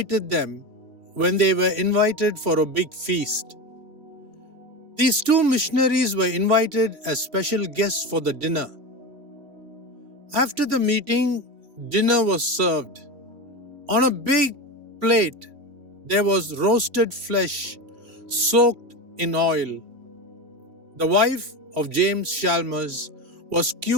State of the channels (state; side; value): late; left; 3.0 ms